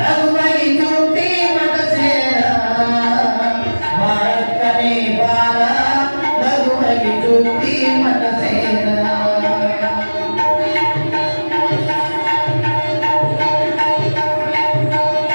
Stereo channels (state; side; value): inverted; both; correlation -1.00